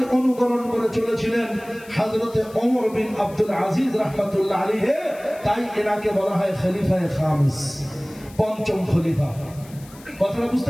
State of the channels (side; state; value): left; noise; hiss, 23 dB below the sound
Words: অনুকরণ করে চলেছিলেন হযরতে ওমর বিন আব্দুল আজিজ রাহমাতুল্লাহ আলাইহি। তাই এনাকে বলা হয় খলিফায়ে খামিস, 5ম খলিফা। কথাটা